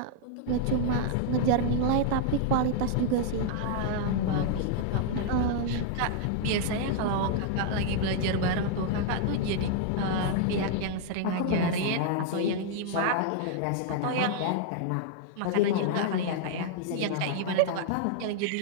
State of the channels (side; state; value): both; different; correlation 0.00